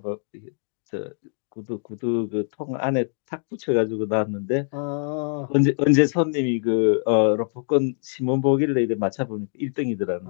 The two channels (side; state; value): right; silent; digital silence